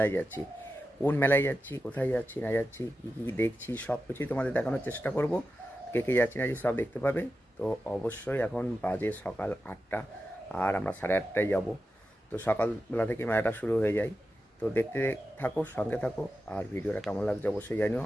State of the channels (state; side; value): normal; both; correlation 0.91